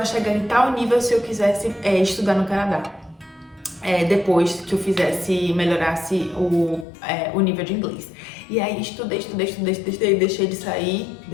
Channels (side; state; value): right; drops out; at 6.9 s